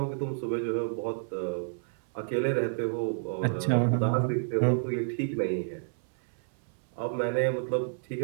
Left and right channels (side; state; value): left; silent; 58 dB below the other